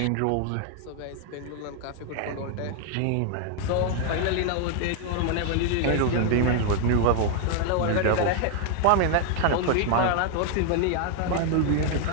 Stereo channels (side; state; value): both; different; correlation 0.00